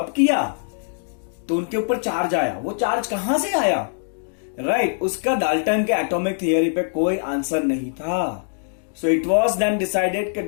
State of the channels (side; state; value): right; silent; digital silence